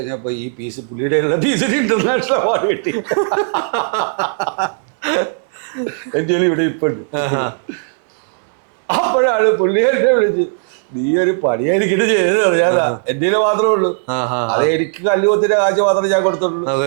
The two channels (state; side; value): silent; left; digital silence